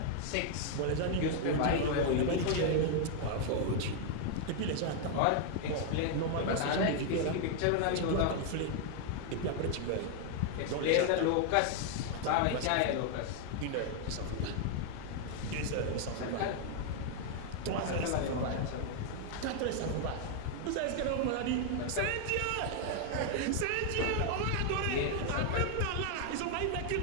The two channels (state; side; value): different; both; correlation 0.00